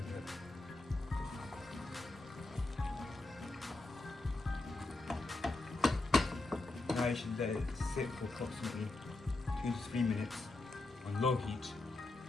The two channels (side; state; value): right; quieter; 3.0 dB